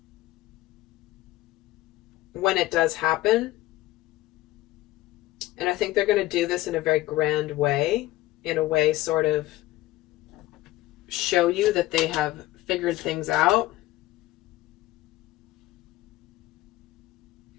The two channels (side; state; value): right; quieter; 17.0 dB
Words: when it does happen. And I think they're going to do this in a very grand way, in a way sort of show you that they have figured things out.